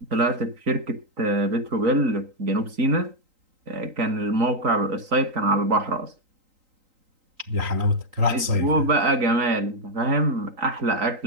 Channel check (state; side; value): late; left; 3.8 ms